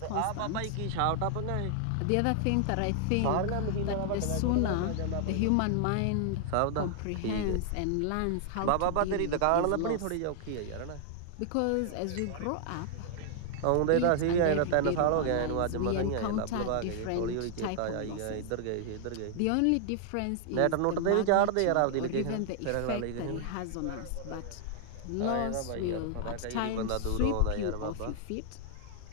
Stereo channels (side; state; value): both; different; correlation 0.00